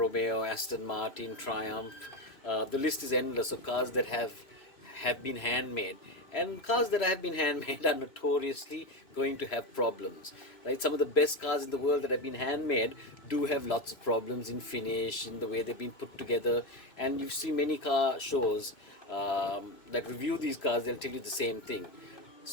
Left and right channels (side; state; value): right; late; 2.6 ms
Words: Aston Martin, Triumph. The list is endless of cars that have been handmade, and cars that have been handmade are notoriously going to have problems, right? Some of the best cars in the world that have been handmade do have lots of problems in finish, in the way they've been put together. And you see many car shows that review these cars, they'll tell you the same thing.